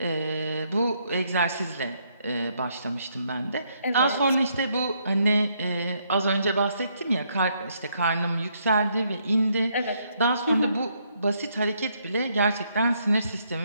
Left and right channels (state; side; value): inverted; both; correlation -0.73